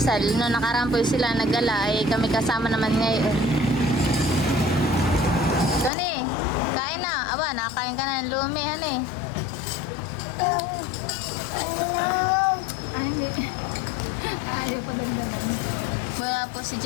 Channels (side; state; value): right; drops out; at 5.9 s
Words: Noong nakaraan po sila naggala ay kami kasama naman ngayon. Tony, kain na. Aba, nakakain ka na ng lumi. Ano eh? Ayaw pa dandanan. Wala po si